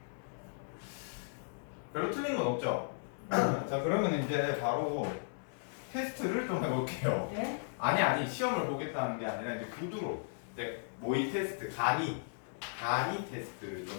별로 틀린 건 없죠? 자 그러면 이제 바로 테스트를 좀 해볼게요. 네? 아니 시험을 보겠다는 게 아니라 이제 구두로 이제 모의 테스트 간이 테스트를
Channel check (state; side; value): silent; right; digital silence